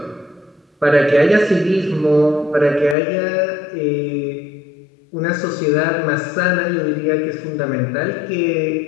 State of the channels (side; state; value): right; drops out; at 3.0 s